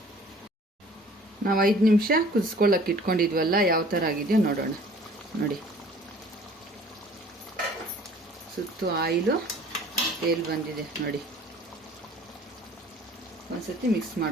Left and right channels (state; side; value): normal; both; correlation 0.51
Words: ನಾವು 5 ನಿಮಿಷ ಕುದಿಸ್ಕೊಳ್ಳೋಕೆ ಇಟ್ಕೊಂಡಿದ್ವಲ್ಲ, ಯಾವ ಥರ ಆಗಿದೆಯೋ ನೋಡೋಣ. ನೋಡಿ, ಸುತ್ತು ಆಯಿಲು ತೇಲ್ ಬಂದಿದೆ ನೋಡಿ. ಒಂದ್ಸತಿ ಮಿಕ್ಸ್